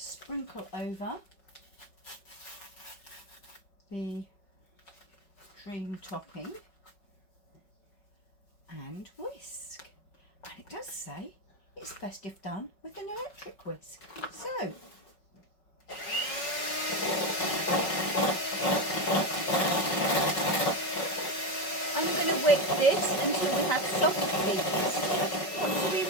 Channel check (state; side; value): late; right; 5.4 ms